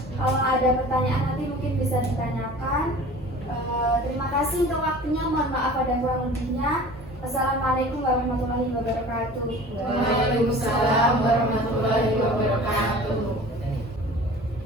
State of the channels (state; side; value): normal; both; correlation 0.42